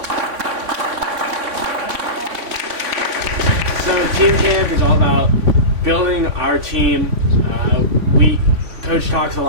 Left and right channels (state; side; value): late; left; 3.5 ms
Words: So team camp is all about building our team. Coach talks a